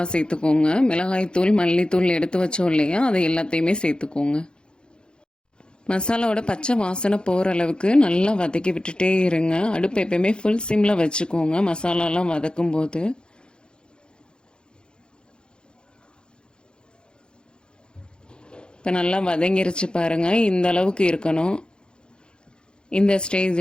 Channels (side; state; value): right; late; 0.050 ms